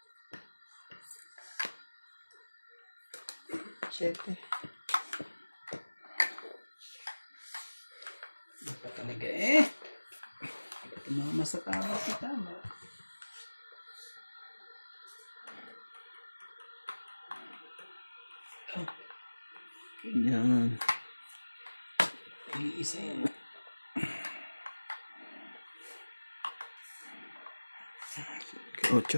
Siyete. Hindi pa talaga eh. Tumama sa tama si tama. Yan. Iisa yan.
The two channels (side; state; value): both; inverted; correlation -1.00